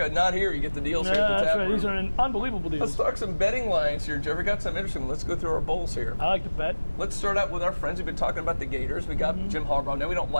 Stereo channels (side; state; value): both; inverted; correlation -1.00